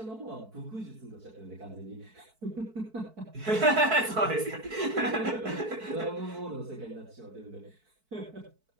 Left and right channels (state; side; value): late; left; 4.6 ms